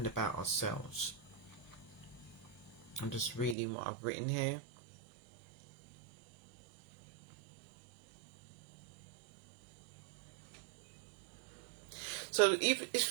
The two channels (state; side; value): drops out; left; at 3.6 s